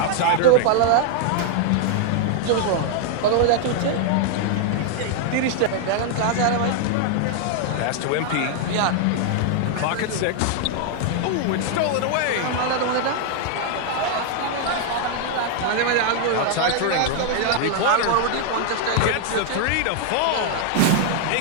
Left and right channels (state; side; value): different; both; correlation 0.00